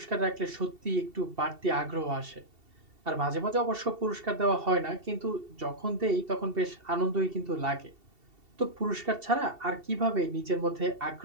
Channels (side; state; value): left; late; 2.7 ms